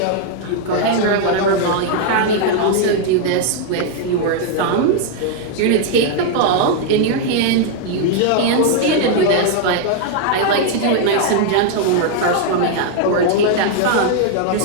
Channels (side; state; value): both; different; correlation 0.00